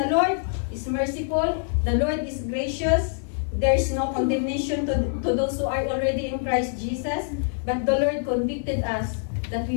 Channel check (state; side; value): silent; right; digital silence